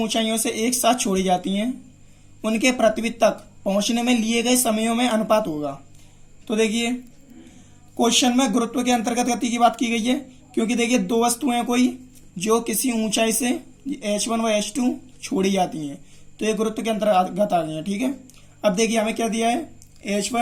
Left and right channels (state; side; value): identical; both; correlation 1.00